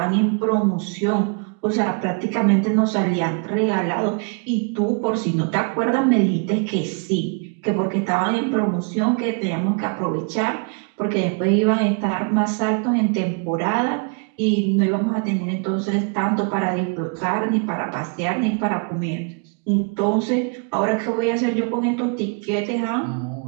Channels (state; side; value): quieter; left; 35.4 dB